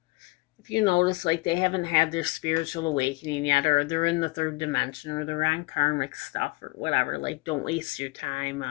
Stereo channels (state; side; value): quieter; right; 24.6 dB